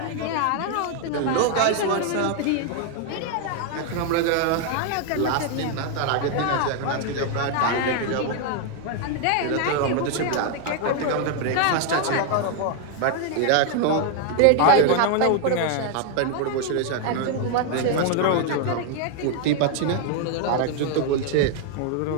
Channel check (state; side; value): different; both; correlation 0.00